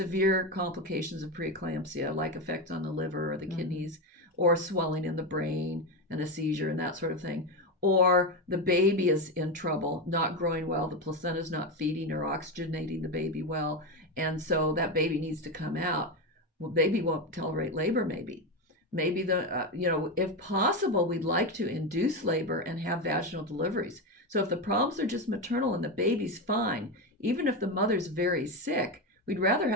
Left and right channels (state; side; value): normal; both; correlation 0.14